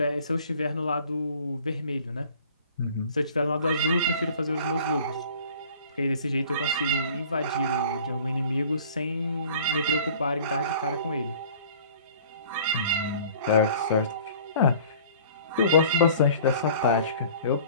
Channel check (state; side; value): inverted; both; correlation -0.49